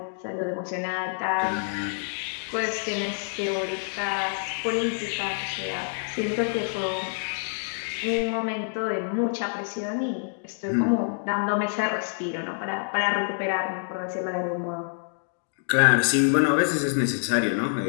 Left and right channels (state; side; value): silent; right; digital silence